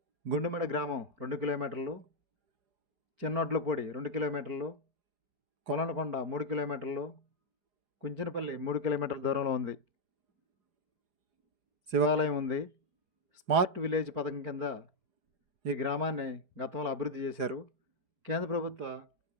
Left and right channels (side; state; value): left; late; 4.9 ms